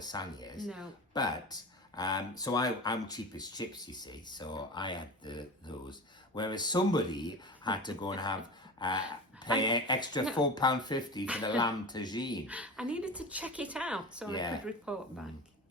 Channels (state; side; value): normal; both; correlation 0.30